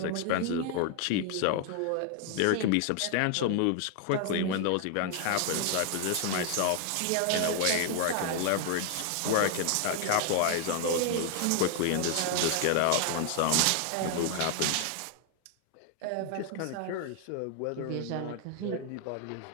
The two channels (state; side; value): different; both; correlation 0.00